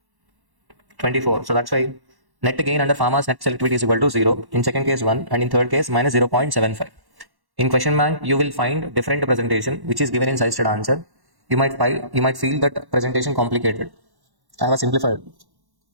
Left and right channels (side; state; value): left; late; 1.1 ms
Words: 24. So that's why net gain under pharma's net selectivity is equal to 0. In second case 1 and in third case minus 0.75. In question bank you will find different presentation which is given in suggested answer. You might feel that presentation complicated. I have simplified.